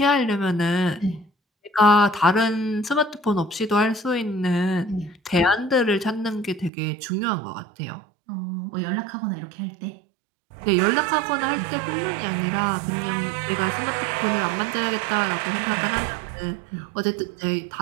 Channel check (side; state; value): left; drops out; at 6.7 s